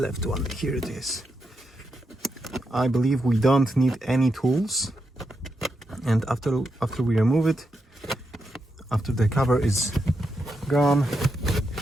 one? Here it is. I believe we don't need any tools, and after we remove it, after the cover is gone,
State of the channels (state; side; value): normal; both; correlation 0.84